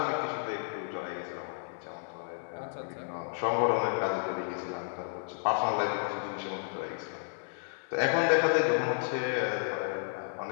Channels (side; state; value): right; silent; 56 dB below the other